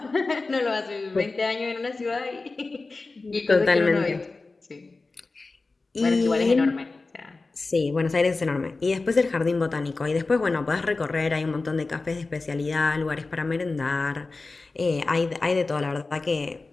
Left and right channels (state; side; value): quieter; right; 3.6 dB